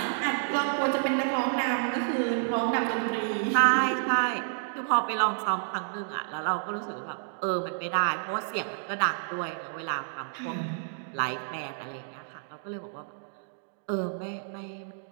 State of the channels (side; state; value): left; silent; digital silence